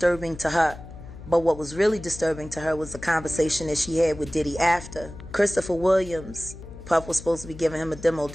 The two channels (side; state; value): left; noise; hum, 15 dB below the sound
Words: to her, but what was really disturbing to her was the conversation that she had with Diddy after. Christopher Williams, Puff was supposed to be giving him a demo